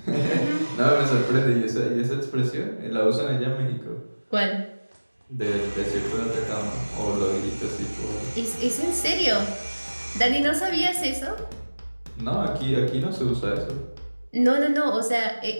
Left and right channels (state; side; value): inverted; both; correlation -1.00